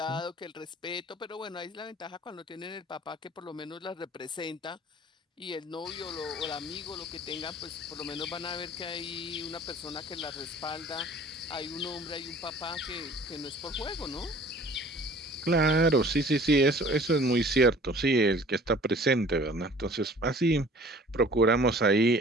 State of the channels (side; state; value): both; normal; correlation 0.49